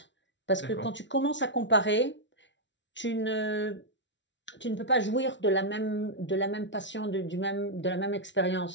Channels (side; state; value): right; late; 0.53 ms